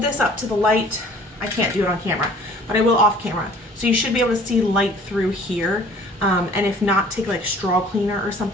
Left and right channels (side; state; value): both; normal; correlation 0.51